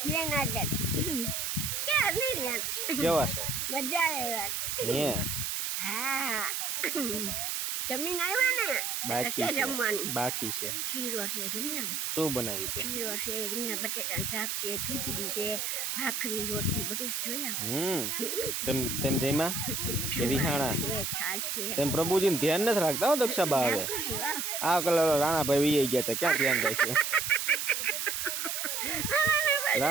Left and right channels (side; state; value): right; noise; hiss, 1 dB below the sound